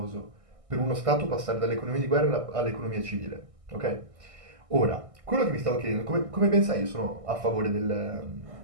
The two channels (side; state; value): left; late; 1.6 ms